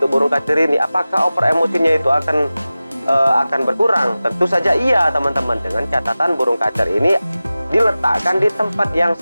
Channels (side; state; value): both; inverted; correlation -0.96